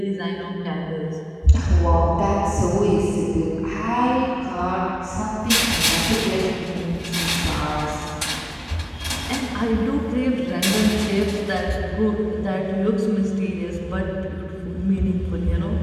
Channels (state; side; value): identical; both; correlation 1.00